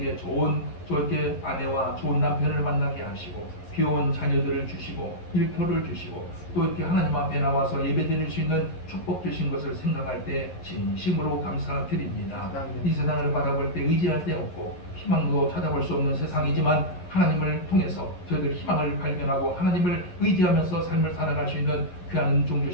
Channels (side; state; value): right; late; 11 ms